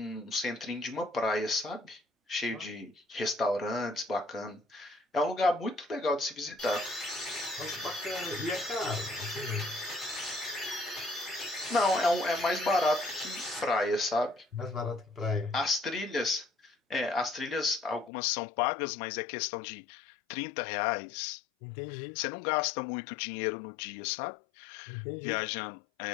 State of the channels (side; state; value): right; drops out; at 18.1 s